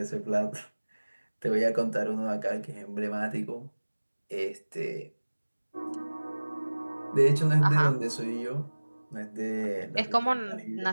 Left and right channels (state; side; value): inverted; both; correlation -1.00